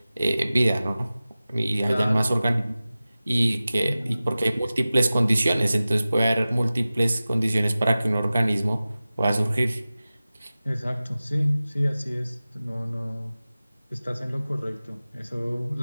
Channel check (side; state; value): both; inverted; correlation -0.96